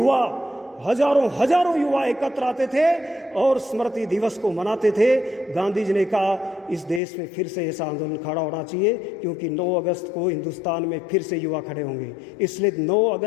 हजारों युवा एकत्र आते थे और स्मृति दिवस को मनाते थे। गांधी जी ने कहा इस देश में फिर से ऐसा आंदोलन खड़ा होना चाहिए, क्योंकि 9 अगस्त को हिंदुस्तान में फिर से युवा खड़े होंगे। इसलिए 9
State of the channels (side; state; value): right; drops out; at 7.0 s